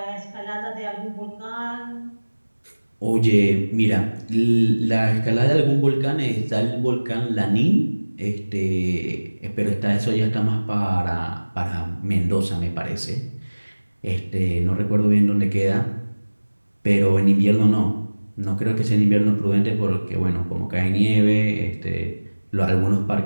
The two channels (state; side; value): inverted; both; correlation -1.00